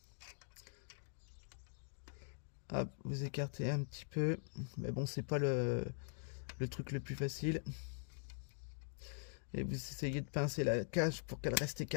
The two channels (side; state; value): right; silent; digital silence